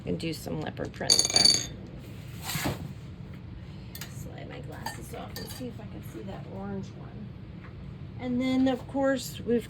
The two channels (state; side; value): identical; both; correlation 1.00